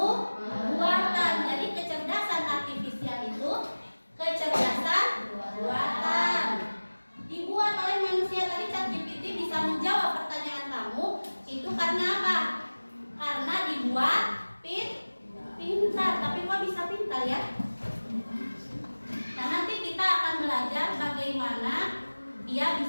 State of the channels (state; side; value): inverted; both; correlation -1.00